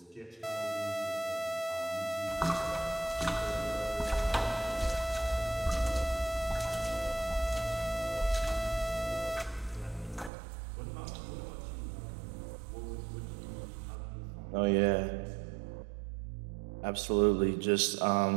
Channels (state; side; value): drops out; left; at 10.3 s